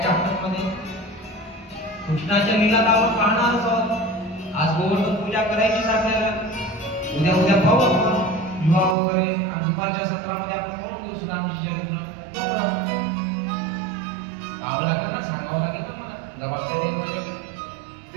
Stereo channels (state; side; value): drops out; left; at 9.0 s